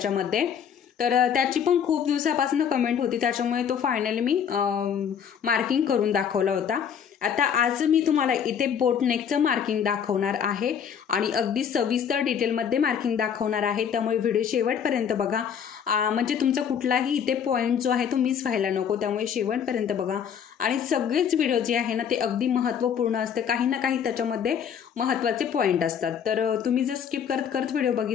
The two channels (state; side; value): quieter; right; 7.9 dB